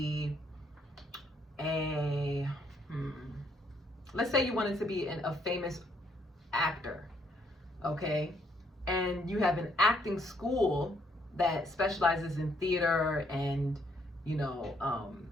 let's say you wanted to be a famous actor, okay? And you have an acting school that specializes in theater and,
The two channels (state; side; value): normal; both; correlation 0.70